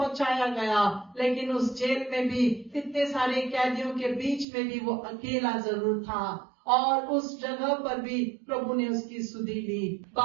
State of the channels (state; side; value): drops out; left; at 4.5 s